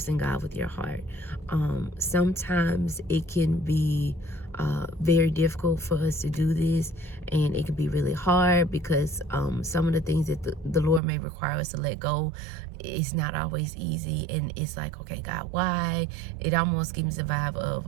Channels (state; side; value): drops out; left; at 11.0 s